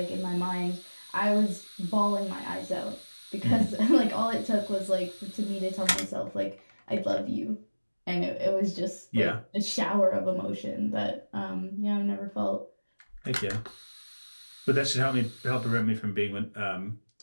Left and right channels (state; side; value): inverted; both; correlation -1.00